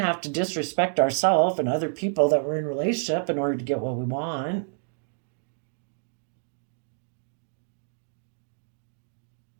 to disrespect ourselves and other people that we're in relationship in order to get what we want.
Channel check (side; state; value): left; silent; digital silence